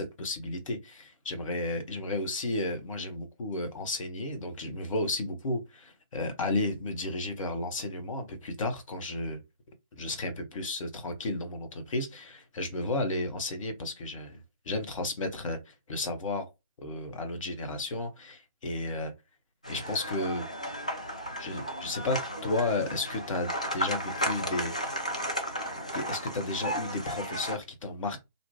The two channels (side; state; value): both; inverted; correlation -0.39